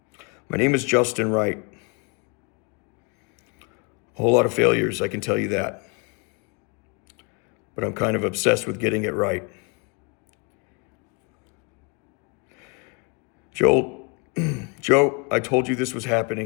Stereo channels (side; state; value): right; quieter; 32.6 dB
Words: My name is Justin Wright. A whole lot of failures, I can tell you that. But I'm kind of obsessed with getting it right. Joe, I told you this was